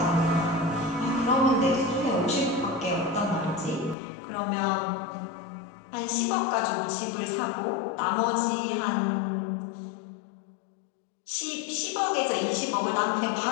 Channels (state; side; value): drops out; right; at 4.0 s